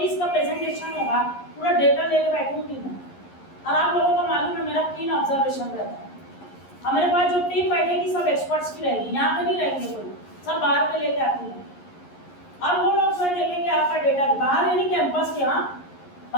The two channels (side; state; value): right; late; 11 ms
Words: का प्रेजेंटेशन होगा पूरा डेटा लेके बैठूंगी मैं, और आप लोगों को मालूम है मेरा कीन ऑब्जर्वेशन रहता है। और मेरे पास जो टीम बैठेगी सब एक्सपर्ट्स की रहेगी, यहाँ पे नहीं रहेंगे कोई, सब बाहर पे लेके आती है। और वो लोग जो देखेंगे आपका डेटा बाहर, यानी कैंपस के, यहाँ